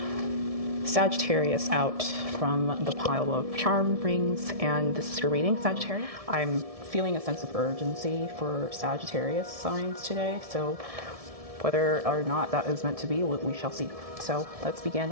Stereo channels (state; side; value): late; left; 1.7 ms